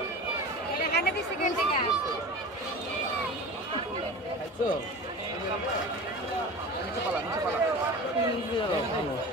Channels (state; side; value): normal; both; correlation 0.34